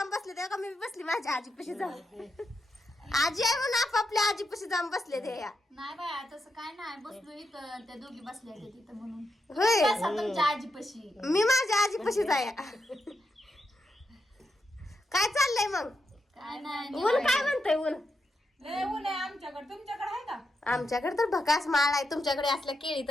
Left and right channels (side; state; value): both; normal; correlation 0.84